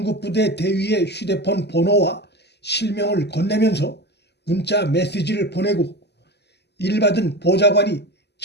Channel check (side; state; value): right; late; 0.49 ms